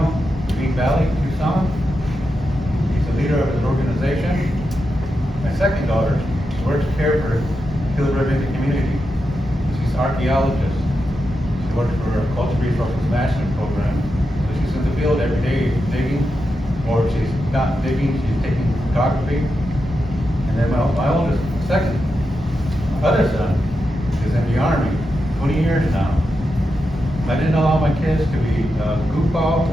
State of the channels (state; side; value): normal; both; correlation 0.88